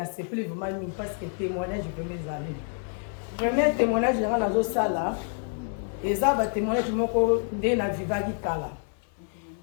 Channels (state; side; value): silent; right; 55 dB below the other